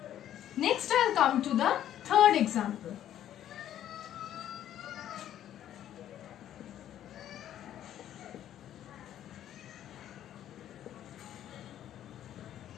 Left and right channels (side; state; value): right; quieter; 11.3 dB